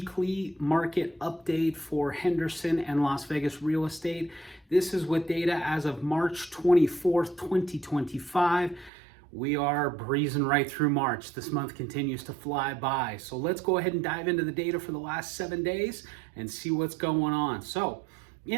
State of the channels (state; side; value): drops out; left; at 8.9 s